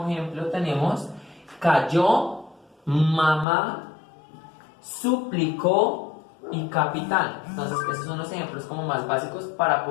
ejemplo tenemos cayó, mamá, suplicó y capitán. Entonces esos son los ejemplos como más básicos para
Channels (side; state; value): right; drops out; at 3.5 s